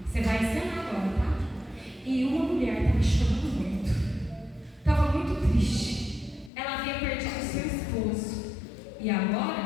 Você vai ensinar agora, tá? E uma mulher estava chorando muito. e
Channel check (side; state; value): right; drops out; at 6.5 s